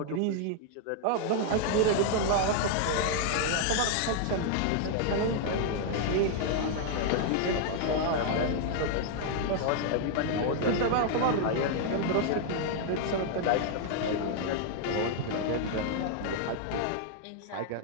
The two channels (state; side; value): different; both; correlation 0.00